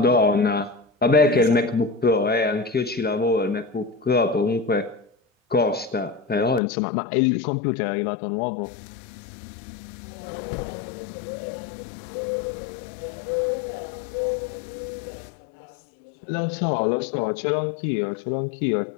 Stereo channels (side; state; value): right; drops out; at 6.6 s